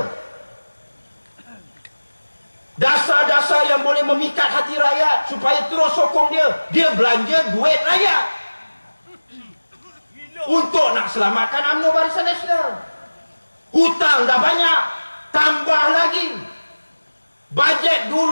Dasar-dasar yang boleh memikat hati rakyat supaya terus sokong dia. Dia belanja duit rakyat untuk nak selamatkan UMNO Barisan Nasional. Hutang dah banyak, tambah lagi. Bajet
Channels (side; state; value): both; inverted; correlation -1.00